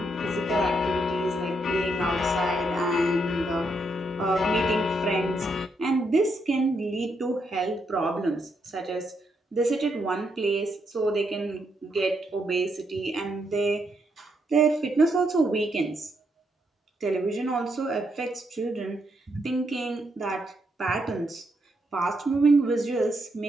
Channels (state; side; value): normal; both; correlation 0.78